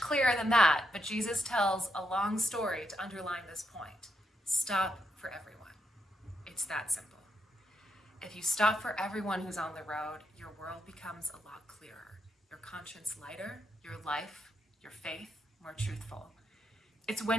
than that, but Jesus tells a long story to underline this point. Stop for everyone. It's that simple. If you stop for everyone who's on the road, your world becomes a lot clearer, your conscience lighter, your life, your faith more truthful. It's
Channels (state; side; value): normal; both; correlation 0.81